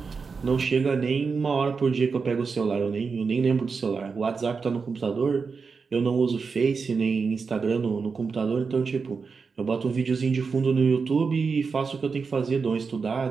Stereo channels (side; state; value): left; quieter; 5.1 dB